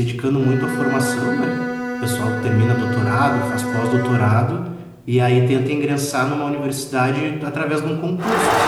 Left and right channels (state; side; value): identical; both; correlation 1.00